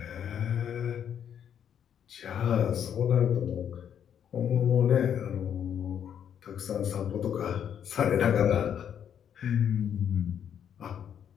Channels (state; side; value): quieter; right; 8.9 dB